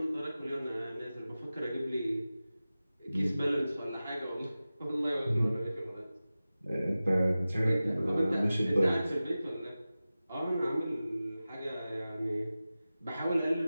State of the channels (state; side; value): inverted; both; correlation -0.95